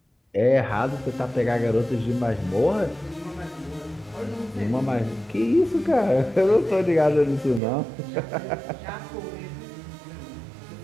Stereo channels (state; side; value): drops out; left; at 7.6 s